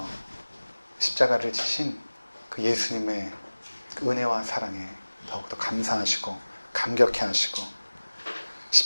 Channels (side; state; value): both; inverted; correlation -1.00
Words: 십자가를 지신 그 예수님의 그 은혜와 사랑에 더욱더 감사하시고 감격해 하시고